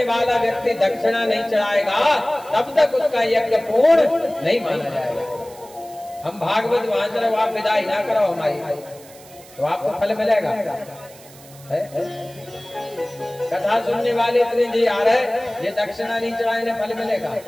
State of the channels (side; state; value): right; noise; hiss, 22 dB below the sound